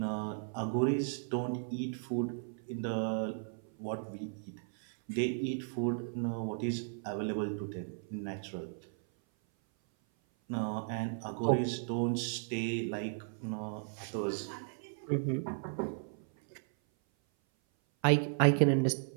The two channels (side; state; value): left; silent; 54 dB below the other